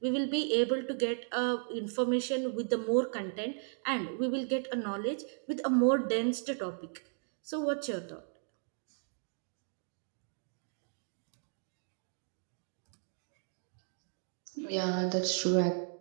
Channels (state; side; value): silent; left; 54 dB below the other